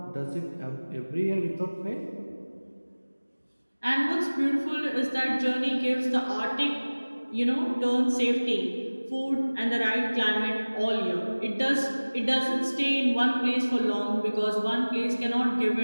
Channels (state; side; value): inverted; both; correlation -1.00